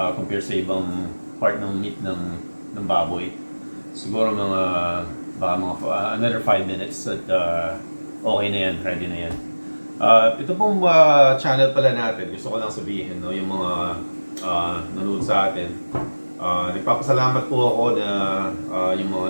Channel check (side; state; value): both; inverted; correlation -1.00